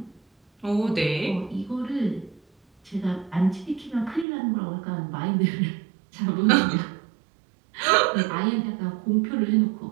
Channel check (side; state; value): left; drops out; at 4.2 s